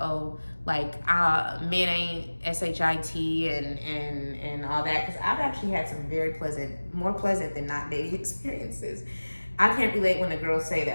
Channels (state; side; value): inverted; both; correlation -1.00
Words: like, men ain't shit and all that. Because I've actually had some very pleasant, more pleasant than not dating experiences. I can't relate when the girls say